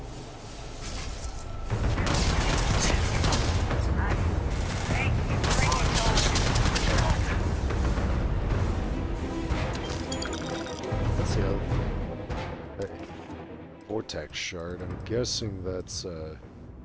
Vortex shard. I'm guessing that's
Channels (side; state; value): both; identical; correlation 1.00